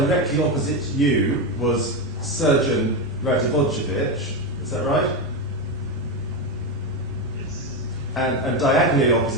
opposite you was Surgeon Radivojevic. Is that right? Yes. And diagonally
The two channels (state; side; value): normal; both; correlation 0.12